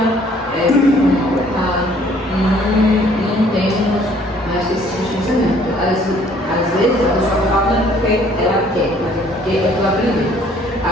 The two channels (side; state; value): both; normal; correlation 0.59